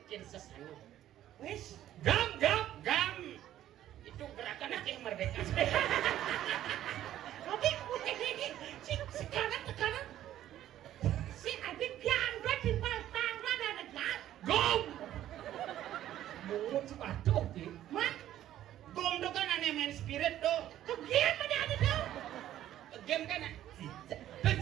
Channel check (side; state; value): left; quieter; 12.5 dB